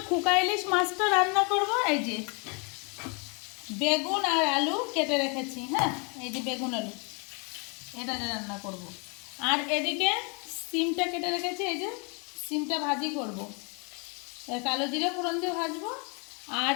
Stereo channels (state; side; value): quieter; right; 33.6 dB